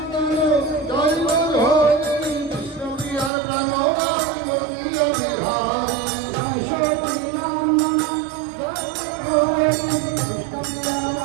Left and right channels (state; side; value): drops out; left; at 3.3 s